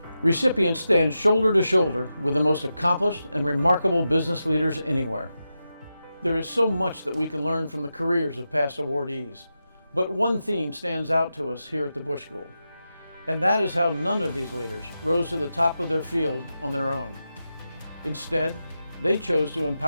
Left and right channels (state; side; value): inverted; both; correlation -0.90